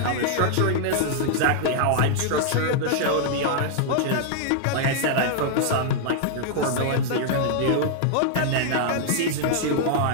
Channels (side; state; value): both; different; correlation -0.01